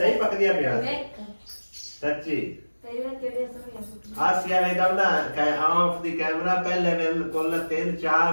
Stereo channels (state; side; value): inverted; both; correlation -1.00